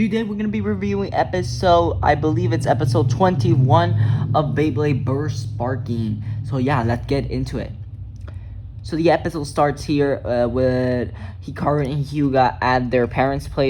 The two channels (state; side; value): identical; both; correlation 1.00